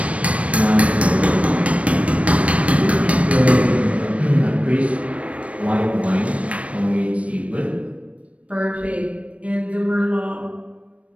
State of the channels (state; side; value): late; left; 0.064 ms